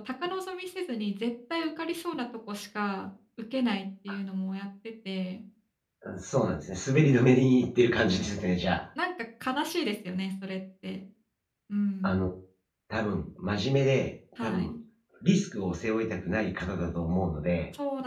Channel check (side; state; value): both; identical; correlation 1.00